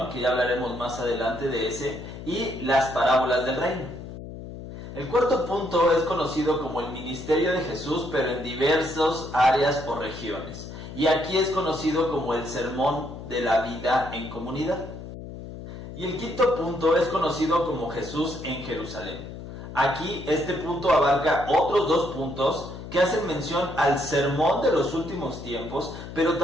que ya hablaremos más adelante de ese, y las parábolas del reino. El cuarto punto es conocido como el ministerio de Jesús, pero en diversas áreas o regiones. Y aquí es conocido como el sermón de la vida en comunidad. Y el quinto punto es conocido como Jesús en Jerusalén. Aquí este punto abarca otros 2 puntos que hacen mención al sermón de los últimos tiempos, pero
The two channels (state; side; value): noise; left; hum, 11 dB below the sound